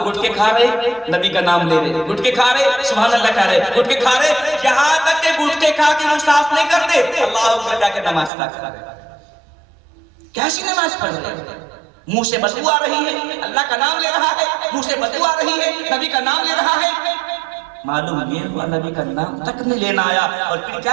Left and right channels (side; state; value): left; drops out; at 8.3 s